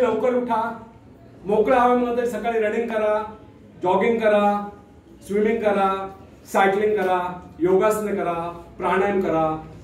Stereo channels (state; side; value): identical; both; correlation 1.00